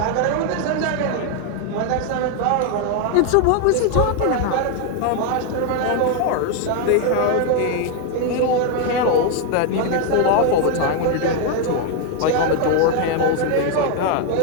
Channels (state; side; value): different; both; correlation 0.01